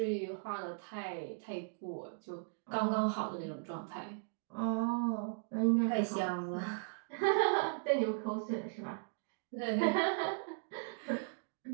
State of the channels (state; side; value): silent; left; digital silence